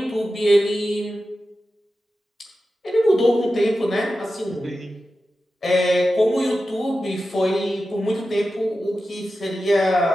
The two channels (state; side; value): normal; both; correlation 0.92